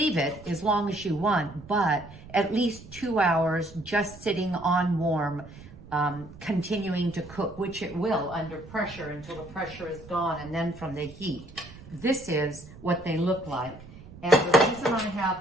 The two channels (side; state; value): right; noise; rumble, 18 dB below the sound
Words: it as long as you want, but at least 2 hours just sitting on warm, continuing to cook, which it will under pressure until the pressure is gone, and then from the heat. This is what they look like. And the reason I